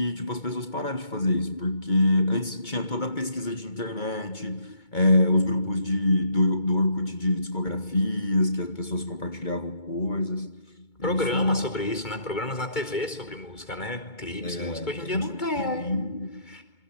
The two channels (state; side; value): late; right; 2.2 ms